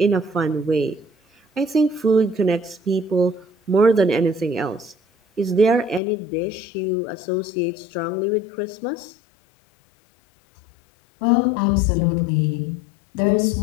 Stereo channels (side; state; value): right; drops out; at 6.0 s